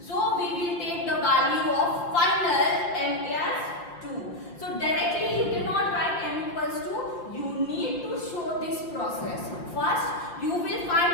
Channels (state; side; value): late; right; 5.7 ms